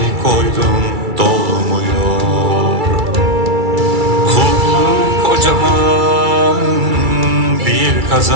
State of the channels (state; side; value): late; left; 2.3 ms